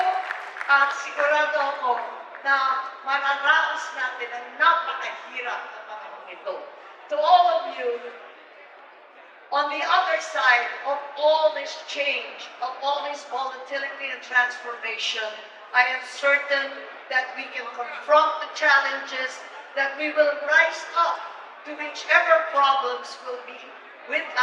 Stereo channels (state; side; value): identical; both; correlation 1.00